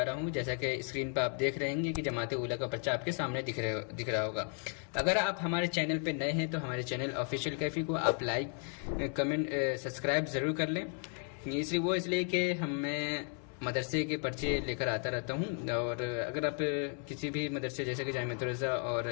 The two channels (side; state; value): right; quieter; 37.1 dB